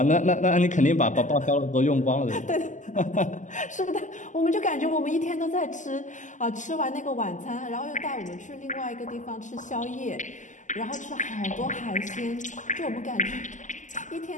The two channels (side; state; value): right; late; 0.36 ms